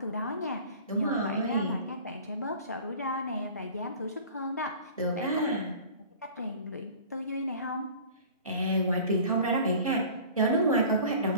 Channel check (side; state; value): both; inverted; correlation -0.43